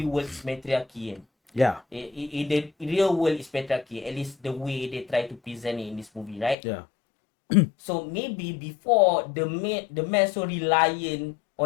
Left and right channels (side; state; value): right; drops out; at 6.6 s